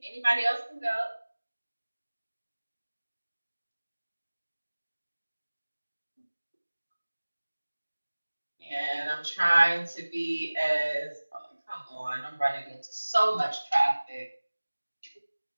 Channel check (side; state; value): both; inverted; correlation -1.00